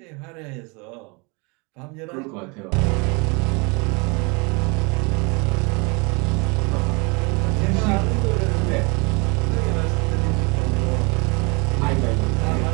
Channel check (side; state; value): left; quieter; 30.0 dB